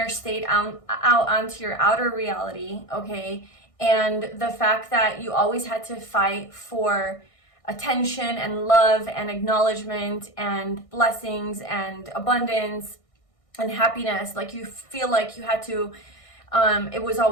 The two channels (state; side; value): late; right; 1.6 ms